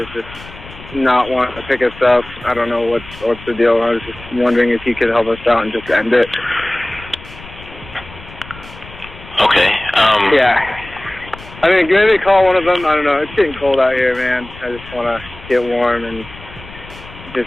just not wanting to pick us up. I don't know what's the deal. I was just wondering if you could help us out and just end it. Okay. Yeah. I mean, maybe call one of them. I don't know. It's getting cold out here, man. I just want to get warm and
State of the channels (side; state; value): left; noise; rumble, 18 dB below the sound